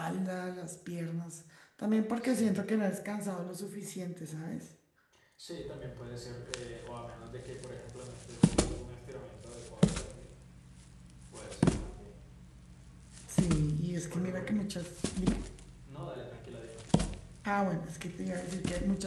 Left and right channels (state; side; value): identical; both; correlation 1.00